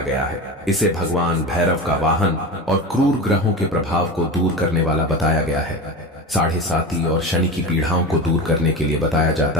गया है। इसे भगवान भैरव का वाहन और क्रूर ग्रहों के प्रभाव को दूर करने वाला बताया गया है। साढ़े साती और शनि की पीड़ाओं को दूर करने के लिए बताया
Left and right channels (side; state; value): both; normal; correlation 0.26